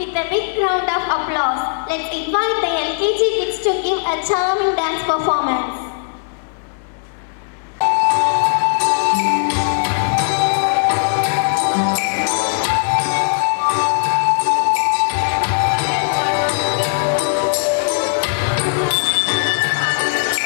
a big round of applause, let's invite the LKG kids to give a charming dance performance.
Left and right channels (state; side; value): silent; right; 67 dB below the other